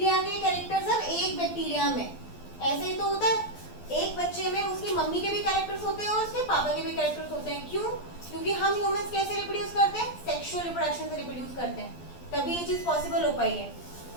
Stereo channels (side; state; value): right; late; 12 ms